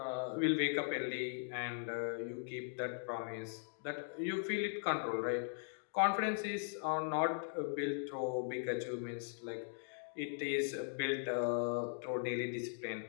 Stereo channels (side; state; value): right; silent; digital silence